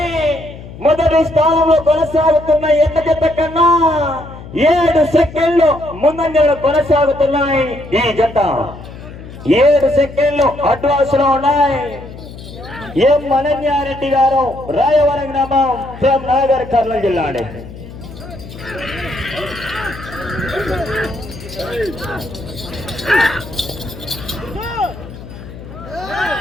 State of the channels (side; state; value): left; noise; hum, 15 dB below the sound